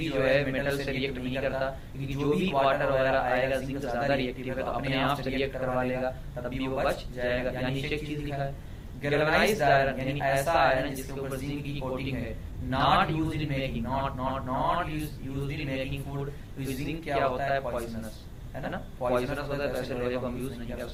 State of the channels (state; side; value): identical; both; correlation 1.00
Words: जो है मेटल से रिएक्ट नहीं करता, क्योंकि जो भी वाटर वगैरह आएगा जिंक ज्यादा रिएक्टिव है तो अपने आप से रिएक्ट करवा लेगा, तब भी वो बच जाएगा। यानी नीचे एक चीज लिखा है, गैल्वेनाइज्ड आयरन यानी ऐसा आयरन जिसके ऊपर जिंक की कोटिंग है, not used in making, not used in making food. Zinc क्या होता है, पॉइजनस है ना, पॉइजनस होता है, वैसे लोहे को हम यूज नहीं कर